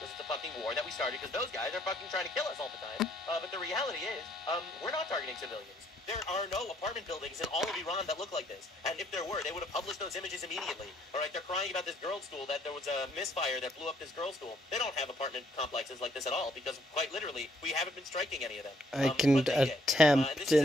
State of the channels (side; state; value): both; normal; correlation 0.67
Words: it's a fucking war that we started because those guys are fucking trying to kill us all the time. But the reality is, we're not targeting civilians. There are no apartment buildings in all of Iran that look like this. And if there were, they would have published those images immediately. All right, they're crying about this girls' school, that there was a misfire that blew up this girls' school. They don't have apartment complexes like this at all because, quite literally, we haven't been striking any of them. I can attempt